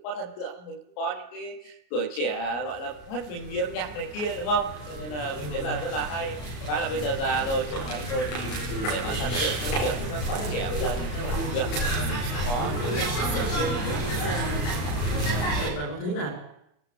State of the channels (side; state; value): right; late; 33 ms